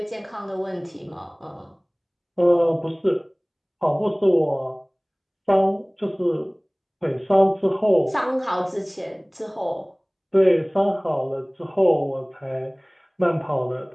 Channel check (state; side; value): identical; both; correlation 1.00